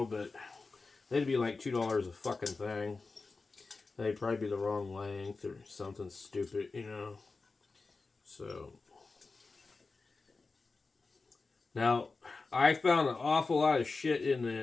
but they'd be like $2 a fucking thing. They'd probably be the wrong length or something stupid, you know. So now I found an awful lot of shit in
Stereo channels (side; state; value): right; quieter; 4.0 dB